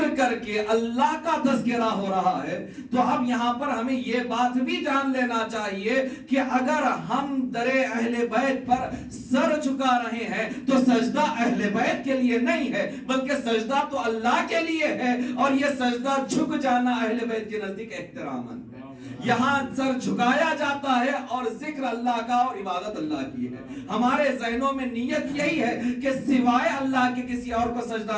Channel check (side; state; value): both; identical; correlation 1.00